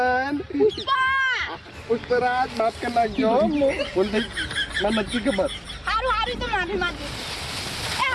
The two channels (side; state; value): both; identical; correlation 1.00